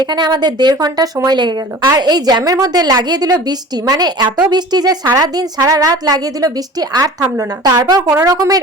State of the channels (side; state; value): both; normal; correlation 0.40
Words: আমাদের 1.5 ঘন্টা সময় লেগে গেল। আর এই জ্যামের মধ্যে লাগিয়ে দিল বৃষ্টি, মানে এত বৃষ্টি যে সারা দিন সারা রাত লাগিয়ে দিল বৃষ্টি, আর থামলো না। তারপর কোন রকমের